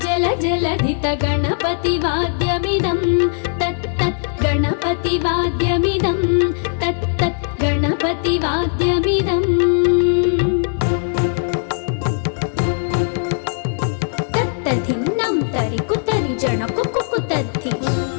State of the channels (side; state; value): right; silent; digital silence